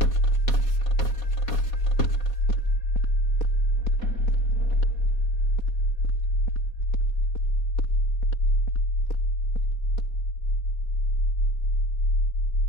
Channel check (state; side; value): late; right; 4.2 ms